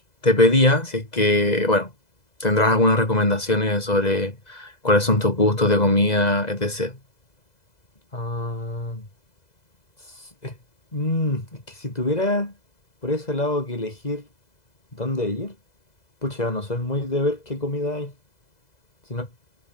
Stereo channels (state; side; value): late; right; 2.0 ms